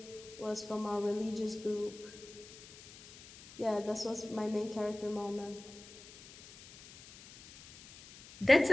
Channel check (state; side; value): noise; left; hiss, 18 dB below the sound